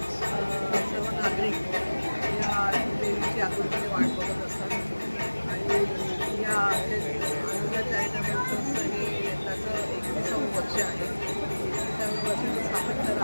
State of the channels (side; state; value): both; inverted; correlation -1.00